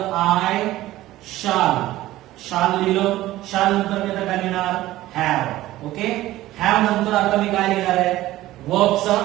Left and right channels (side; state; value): left; quieter; 15.9 dB